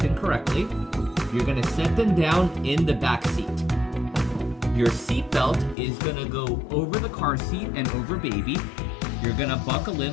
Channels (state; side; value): drops out; right; at 5.8 s